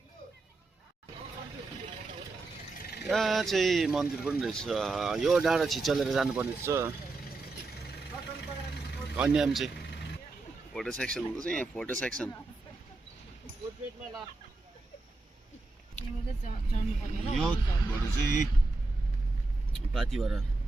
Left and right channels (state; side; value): quieter; left; 3.4 dB